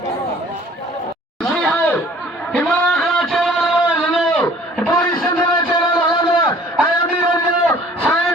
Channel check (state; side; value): normal; both; correlation 0.52